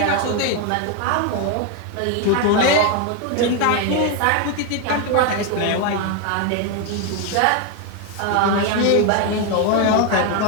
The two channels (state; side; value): different; both; correlation 0.01